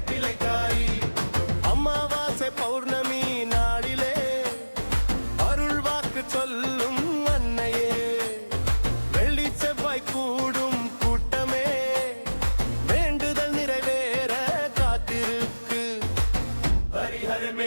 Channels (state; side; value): inverted; both; correlation -1.00